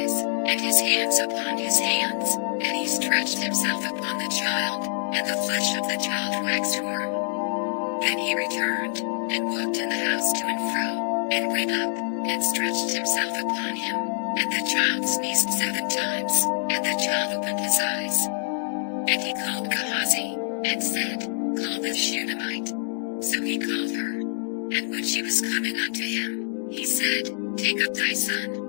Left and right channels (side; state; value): right; silent; digital silence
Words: and his hands upon his hands, and he stretched himself upon the child, and the flesh of the child waxed warm. Then he returned, and walked in the house to and fro, and went up, and stretched himself upon him, and the child sneezed 7 times, and the child opened his eyes. And he called Gehazi, and said, Call the Shunammite. So he called her. And when she was coming unto him, he said, Take up thy